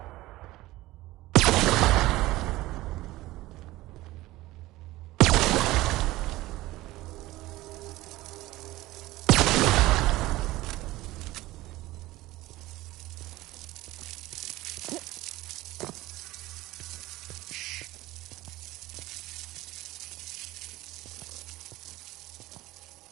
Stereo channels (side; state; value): left; quieter; 17.9 dB